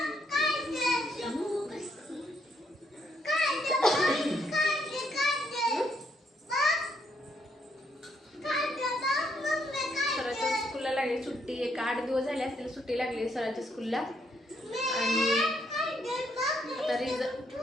स्कूलला लागली सुट्टी. एक 8 दिवस झाले असतील सुट्टी लागली स्वराच्या स्कूलला. आणि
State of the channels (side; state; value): both; normal; correlation 0.73